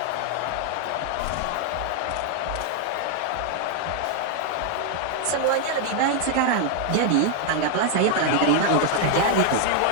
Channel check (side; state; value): both; different; correlation 0.00